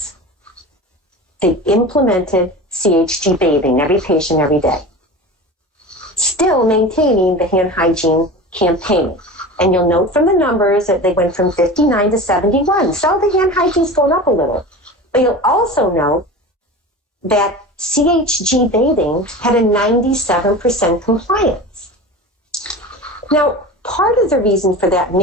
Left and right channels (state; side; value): normal; both; correlation 0.32